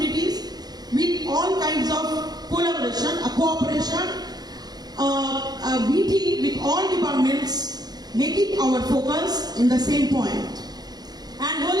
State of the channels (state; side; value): late; left; 0.19 ms